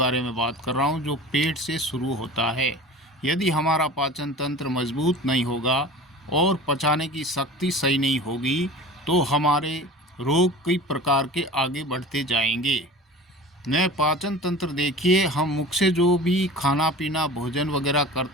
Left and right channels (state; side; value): normal; both; correlation 0.37